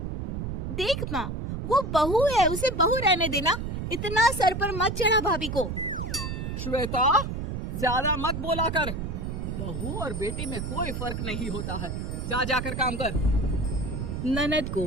देख माँ, वो बहू है, उसे बहू रहने देना, इतना सर पर मत चढ़ा भाभी को। श्वेता, ज्यादा मत बोला कर। बहू और बेटी में कोई फर्क नहीं होता है। जा जाकर काम कर। ननद को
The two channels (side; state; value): right; noise; rumble, 4 dB below the sound